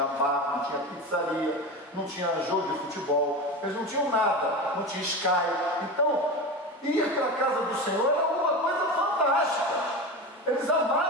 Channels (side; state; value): both; normal; correlation 0.25